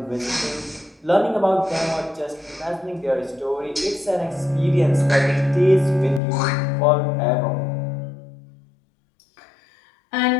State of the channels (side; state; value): right; drops out; at 6.2 s